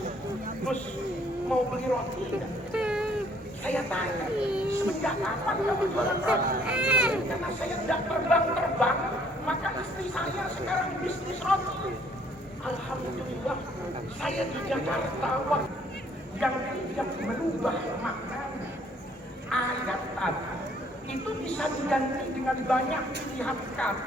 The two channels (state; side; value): normal; both; correlation 0.62